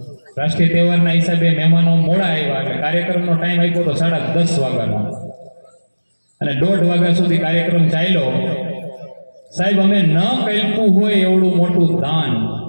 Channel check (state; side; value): inverted; both; correlation -1.00